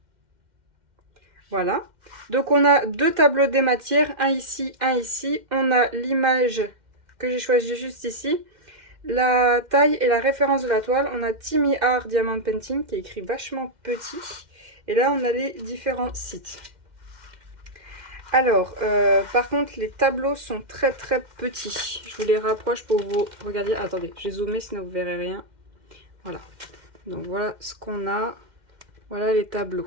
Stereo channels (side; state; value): left; late; 2.1 ms